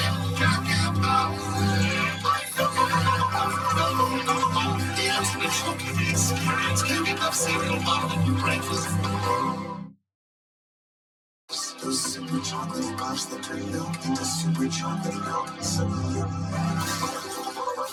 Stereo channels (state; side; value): identical; both; correlation 1.00